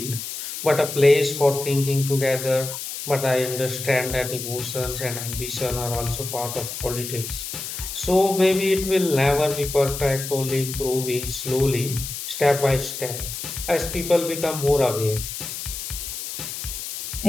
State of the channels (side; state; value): left; noise; hiss, 7 dB below the sound